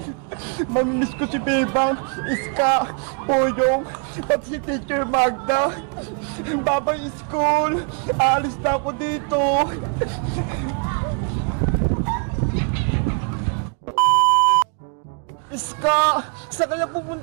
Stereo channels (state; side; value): quieter; left; 39.3 dB